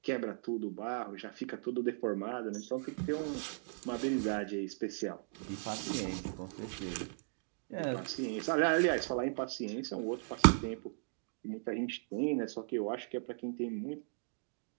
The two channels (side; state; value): left; silent; digital silence